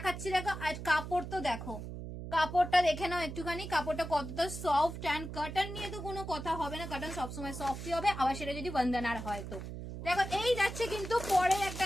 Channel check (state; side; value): noise; right; hum, 8 dB below the sound